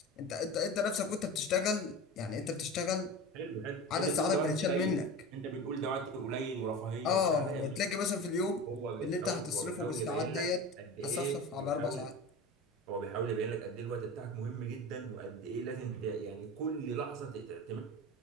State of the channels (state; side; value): normal; both; correlation 0.30